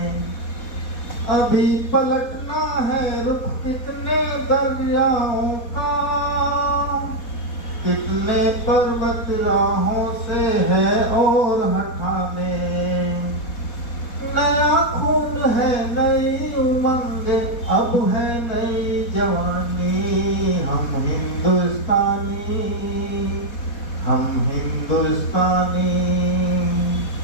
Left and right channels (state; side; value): late; right; 4.2 ms